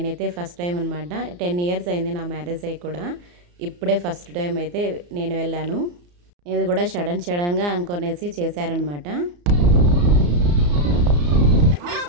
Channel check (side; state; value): left; late; 34 ms